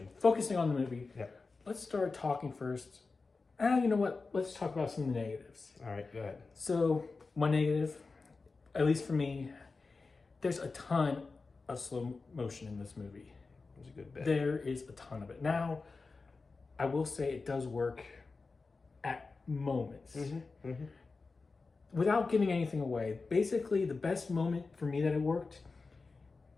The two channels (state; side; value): quieter; right; 4.1 dB